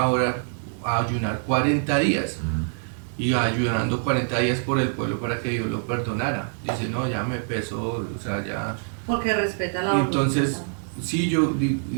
a ayunar 40 días. Y ayunando 40 días por el pueblo para que Dios lo perdonara. Dice, no, ya me pesó, o sea, ya... Porque respeta la Y entonces, sí,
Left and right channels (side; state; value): left; silent; 62 dB below the other